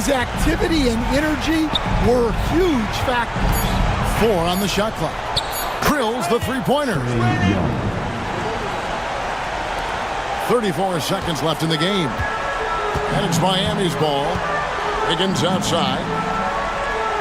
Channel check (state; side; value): identical; both; correlation 1.00